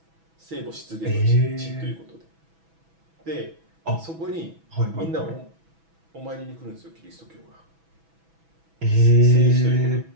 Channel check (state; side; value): late; left; 6.1 ms